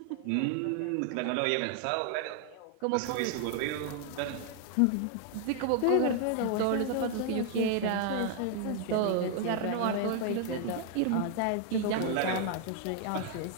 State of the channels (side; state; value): both; different; correlation 0.00